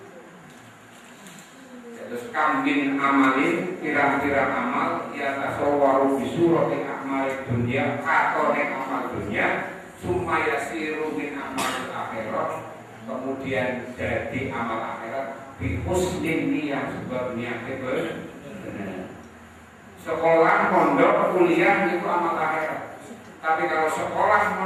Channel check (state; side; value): identical; both; correlation 1.00